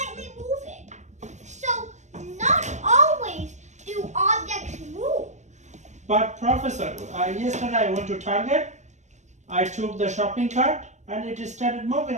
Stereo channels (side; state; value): left; late; 0.34 ms